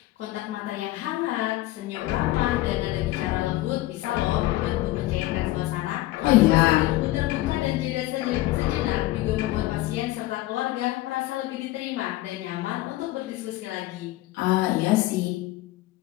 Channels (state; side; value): quieter; right; 17.4 dB